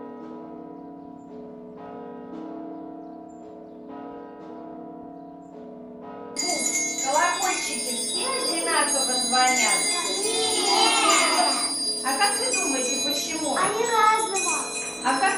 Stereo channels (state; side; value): identical; both; correlation 1.00